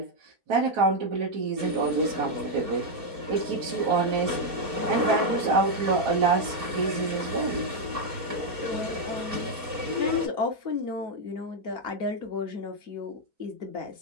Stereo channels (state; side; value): late; left; 4.3 ms